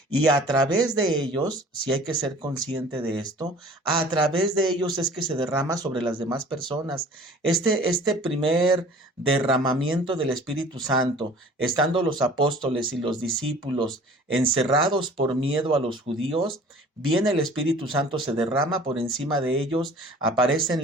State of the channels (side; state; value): both; normal; correlation 0.47